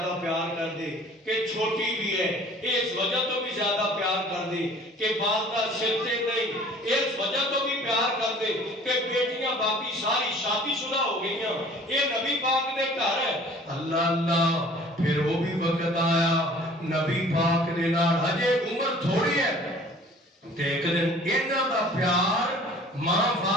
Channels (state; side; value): normal; both; correlation 0.49